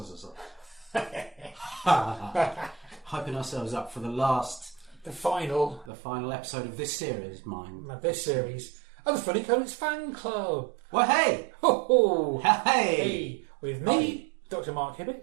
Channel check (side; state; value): left; drops out; at 5.9 s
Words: Hyping ourselves up for the final episode of this series, This series of the Funny Comics Fan Club. Well, hey! Ho-ho! Hey! With me, Dr. Mark